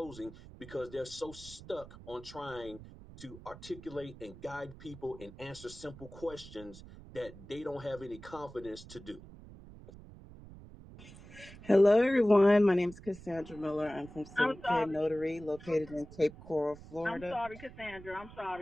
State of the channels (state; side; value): noise; right; rumble, 17 dB below the sound